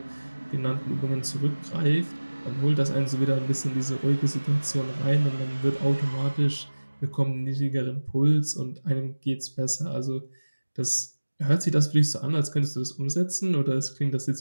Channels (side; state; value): both; inverted; correlation -1.00